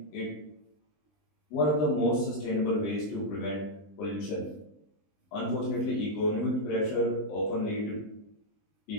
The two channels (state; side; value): late; right; 20 ms